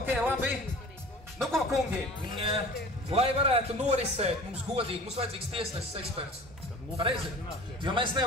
labi. Nu ko, kungi, lai varētu norisēt mums godīgi, mums vajadzīgs tiesnesis eksperts. Pareizi, jo mēs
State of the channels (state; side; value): normal; both; correlation 0.42